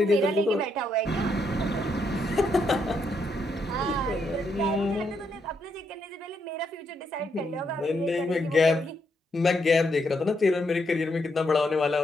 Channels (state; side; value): normal; both; correlation 0.78